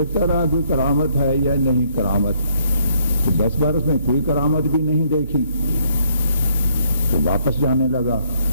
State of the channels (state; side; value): inverted; both; correlation -0.69